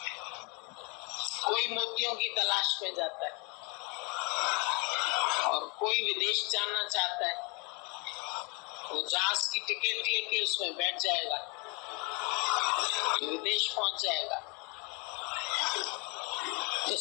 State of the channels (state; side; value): quieter; right; 31.0 dB